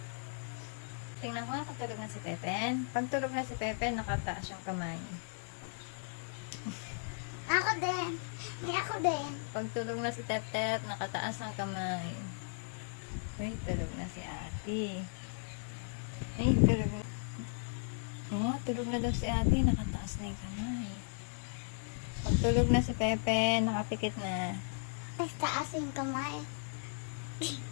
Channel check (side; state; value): right; silent; 54 dB below the other